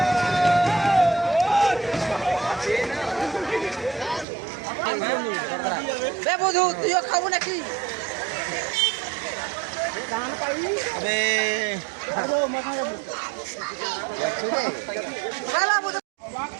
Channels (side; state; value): left; drops out; at 4.2 s